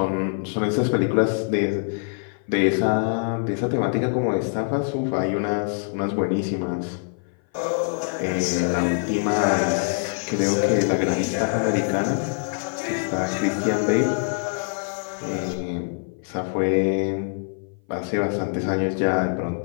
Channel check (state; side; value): silent; right; 57 dB below the other